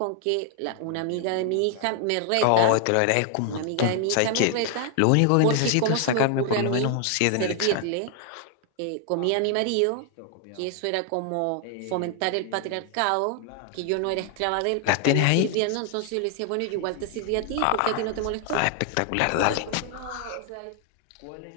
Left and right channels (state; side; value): different; both; correlation 0.00